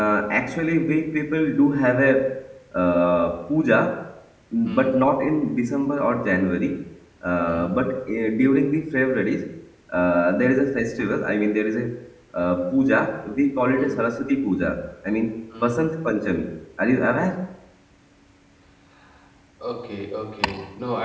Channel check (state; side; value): identical; both; correlation 1.00